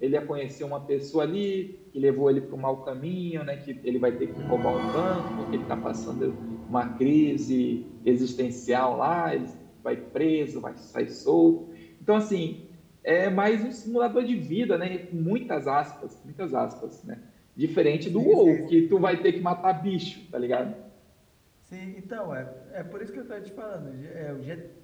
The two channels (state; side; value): identical; both; correlation 1.00